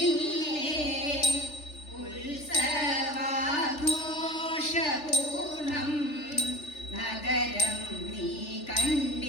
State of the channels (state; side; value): late; right; 3.4 ms